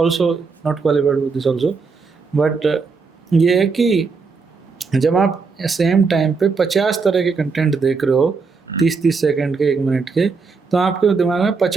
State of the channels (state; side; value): quieter; left; 4.7 dB